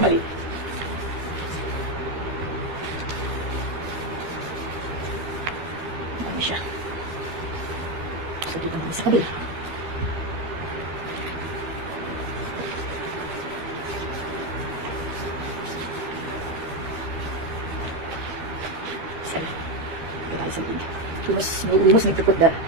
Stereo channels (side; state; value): left; late; 12 ms